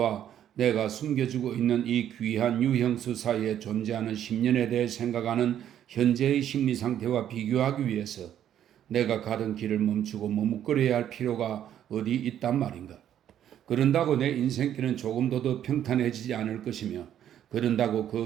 내가 숨겨주고 있는 이 귀한 유형수 사이에 존재하는 10년에 대해 생각하는 현재의 심리 상태와 비교하기 위해서 내가 가던 길을 멈추고 머뭇거려야 할 필요가 어디 있단 말인가. 그런다고 내 인생길은 조금도 더 평탄해지지 않을 것이며, 그런다고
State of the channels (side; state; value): left; quieter; 10.5 dB